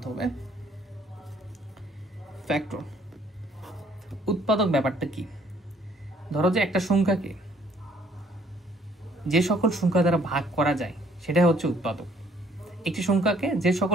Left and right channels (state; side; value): normal; both; correlation 0.63